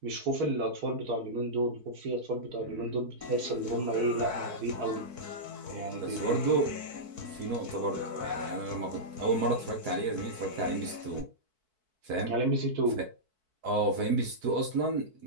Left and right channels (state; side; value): late; left; 4.6 ms